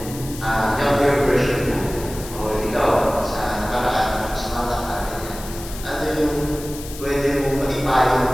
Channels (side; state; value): left; noise; hiss, 14 dB below the sound